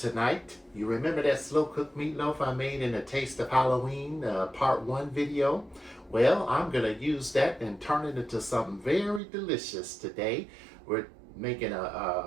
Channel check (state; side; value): drops out; left; at 9.2 s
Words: you remember that slow cooked meatloaf I made in the Taste of Halloween part 1 video? Well, I'm going to use that and turn it into something very delicious today. We're making